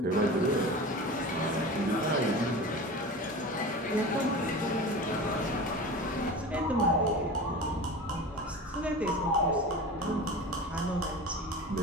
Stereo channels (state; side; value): normal; both; correlation 0.32